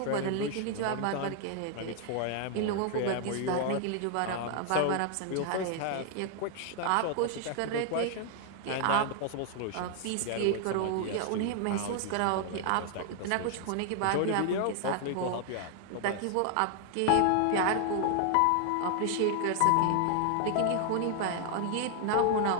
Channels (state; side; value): different; both; correlation 0.00